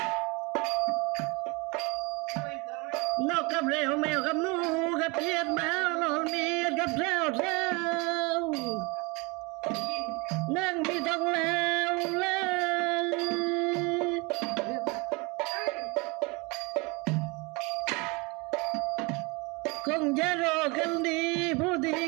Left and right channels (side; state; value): left; quieter; 27.5 dB